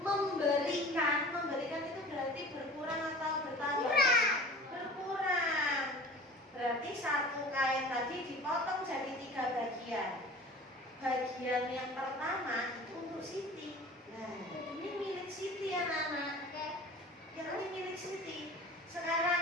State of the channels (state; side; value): normal; both; correlation 0.41